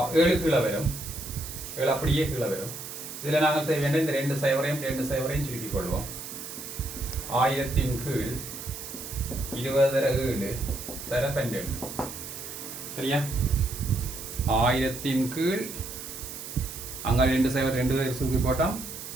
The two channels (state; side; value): noise; right; hiss, 10 dB below the sound